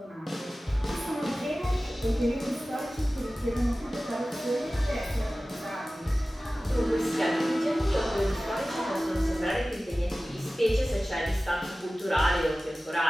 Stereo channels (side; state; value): both; normal; correlation 0.96